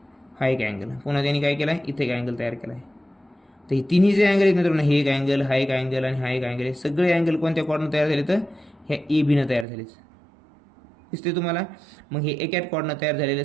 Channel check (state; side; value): drops out; left; at 9.7 s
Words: हा एक अँगल. पुन्हा त्यांनी काय केला, इथे एक अँगल तयार केला आहे. तर हे तिन्ही जे अँगल आहेत मित्रांनो, हे एक अँगल, हा एक अँगल आणि हा एक अँगल, हे सगळे अँगल कोणत्या कॉर्डनं तयार झाले, तर ह्या ए बीनं तयार झालेच, दिसते तुम्हाला. मग हे एकाच कॉर्डनं तयार झालेल्या